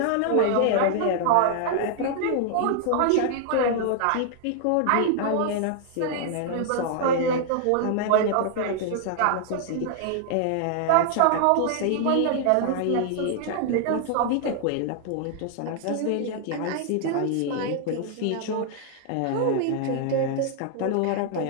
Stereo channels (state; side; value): different; both; correlation 0.00